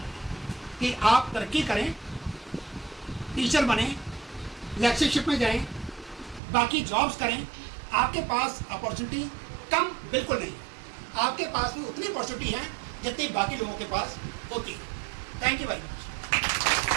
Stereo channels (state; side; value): drops out; left; at 6.4 s